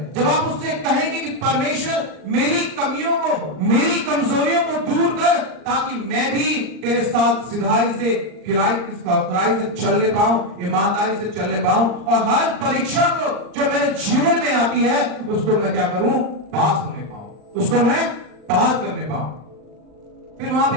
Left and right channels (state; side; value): late; left; 39 ms